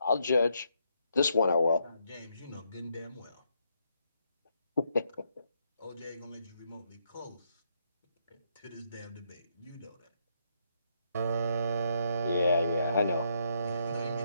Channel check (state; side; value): inverted; both; correlation -0.76